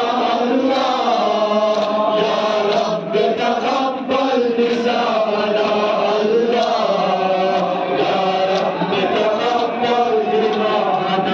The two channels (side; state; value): both; identical; correlation 1.00